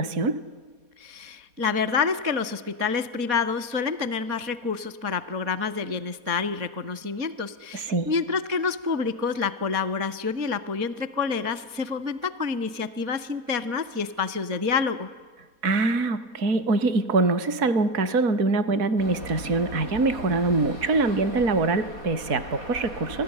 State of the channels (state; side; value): late; left; 4.2 ms